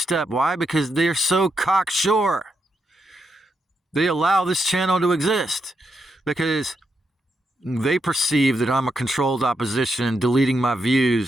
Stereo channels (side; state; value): both; normal; correlation 0.82